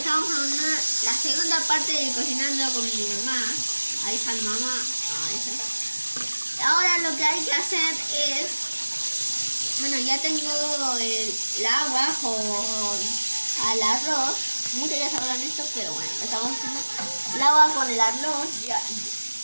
en la segunda parte de cocinando con mi mamá. Ahí está mi mamá. Ahí está. Ahora lo que hay que hacer es... Bueno, ya tengo el agua con al arroz. Muchos ya sabrán esto, pero bueno, estamos haciendo el agua con el arroz. Ya.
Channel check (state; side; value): inverted; both; correlation -1.00